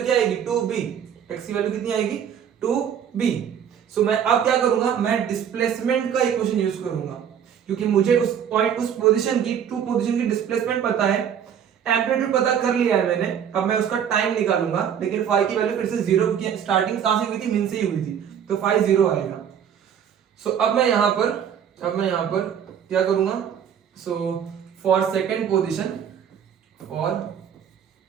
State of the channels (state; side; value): quieter; left; 8.5 dB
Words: क्या आएगी? 2b। x की वैल्यू कितनी आएगी? 2b। सो मैं अब क्या करूंगा? मैं डिस्प्लेसमेंट का इक्वेशन यूज करूंगा क्योंकि मुझे उस पॉइंट, उस पोजीशन की, टू पोजीशन की डिस्प्लेसमेंट पता है, एम्पलीट्यूड पता कर लिया है मैंने। अब मैं उसका टाइम निकालूंगा, लेकिन फाई की वैल्यू फिर से 0 की स्टार्टिंग कहां से हुई थी? मीन से ही हुई थी, तो फाई 0 आएगा। सो अब मैं यहां पर क्या करूंगा? सो फॉर सेकंड पोजीशन